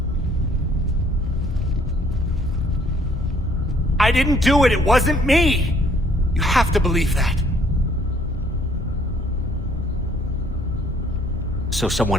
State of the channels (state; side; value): normal; both; correlation 0.62